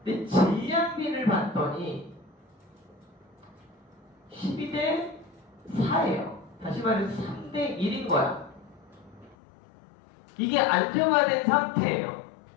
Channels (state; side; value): drops out; right; at 9.3 s